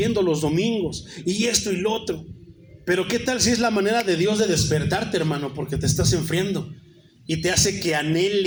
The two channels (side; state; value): both; identical; correlation 1.00